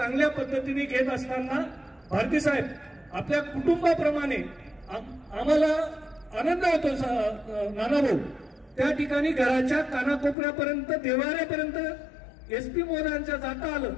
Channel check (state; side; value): drops out; right; at 10.4 s